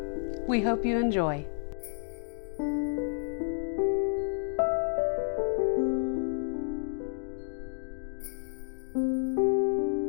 We hope you enjoy.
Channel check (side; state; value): right; silent; digital silence